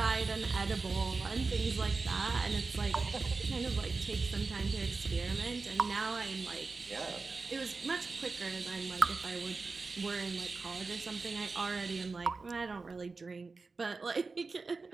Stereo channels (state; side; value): quieter; left; 4.1 dB